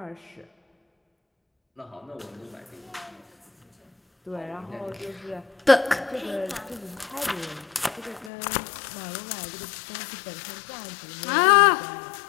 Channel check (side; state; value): right; drops out; at 8.3 s